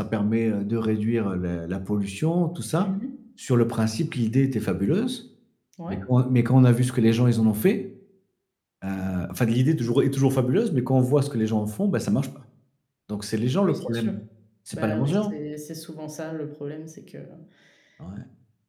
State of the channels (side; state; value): both; identical; correlation 1.00